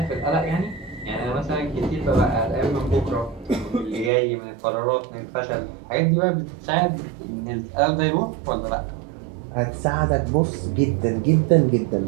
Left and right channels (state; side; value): drops out; left; at 4.1 s